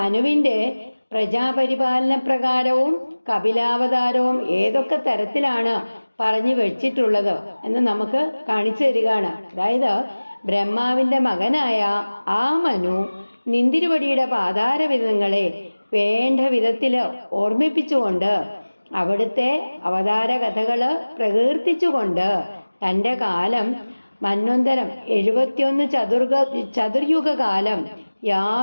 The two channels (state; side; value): inverted; both; correlation -1.00